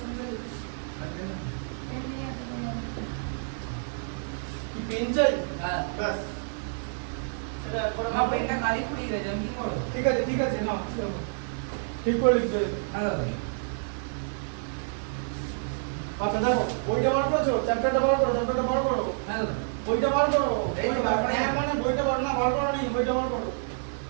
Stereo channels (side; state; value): left; silent; digital silence